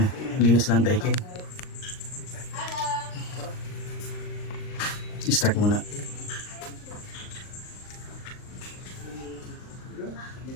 Linis lang daikin. I-start muna.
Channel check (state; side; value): late; right; 39 ms